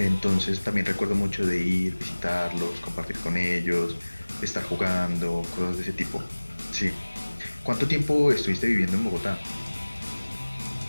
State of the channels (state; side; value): inverted; both; correlation -1.00